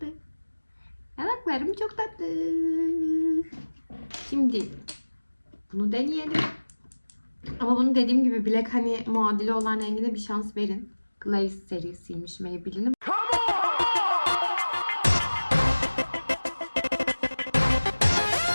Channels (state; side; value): inverted; both; correlation -1.00